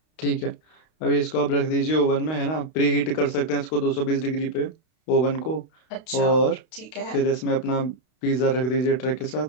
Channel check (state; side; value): late; right; 32 ms